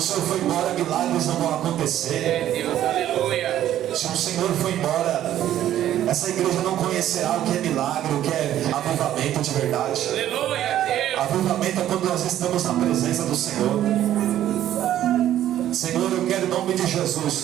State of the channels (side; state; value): left; quieter; 12.0 dB